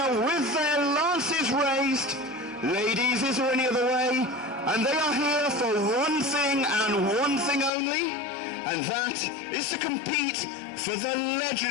with their lances raised. Ladies, is there any other way? And they are here for one thing and one thing only, and that is to compete for the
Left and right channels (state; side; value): drops out; right; at 7.7 s